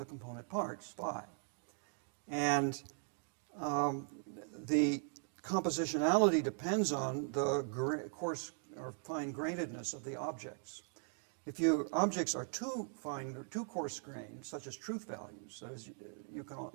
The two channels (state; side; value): silent; left; 51 dB below the other